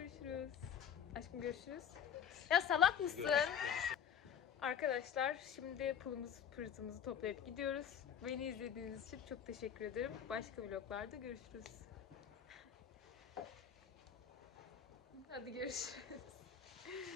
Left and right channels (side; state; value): right; quieter; 8.3 dB